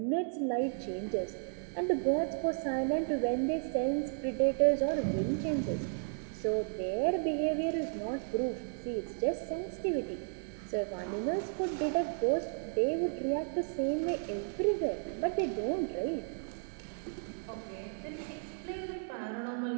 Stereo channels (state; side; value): silent; left; digital silence